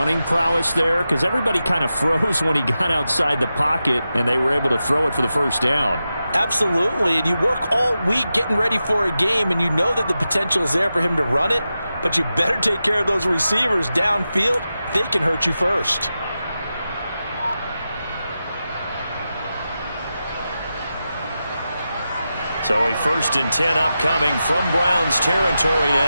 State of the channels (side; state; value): both; inverted; correlation -0.91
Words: prowess there? Because everybody kind of froze when he got outside the pocket, and they were able to throw it for the first down. Absolutely, and you work all week getting ready for a game, and you know that the potential is there for him to run it, but you better take care of those receivers downfield. They can hurt you first. So a 1st and 10 upcoming from Browns territory